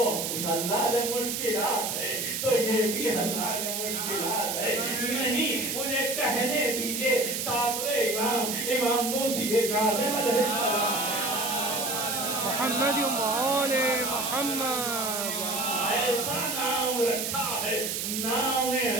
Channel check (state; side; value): noise; right; hiss, 2 dB below the sound